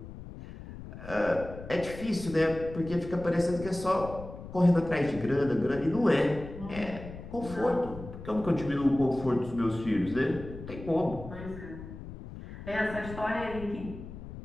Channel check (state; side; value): noise; left; rumble, 12 dB below the sound